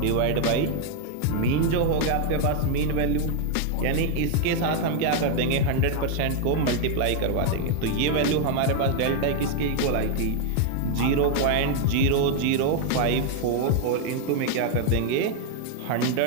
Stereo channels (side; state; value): both; different; correlation 0.00